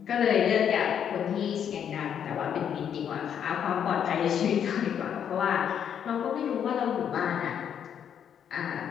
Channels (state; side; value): quieter; right; 8.6 dB